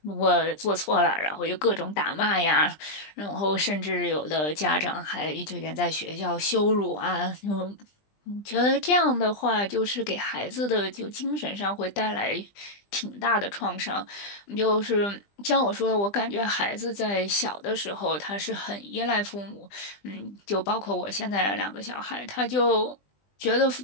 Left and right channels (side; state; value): right; late; 20 ms